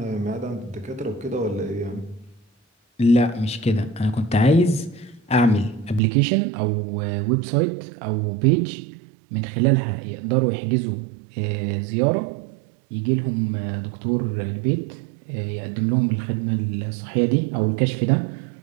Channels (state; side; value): drops out; left; at 6.0 s